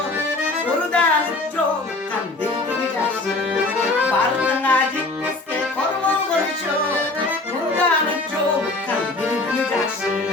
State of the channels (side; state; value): right; quieter; 3.1 dB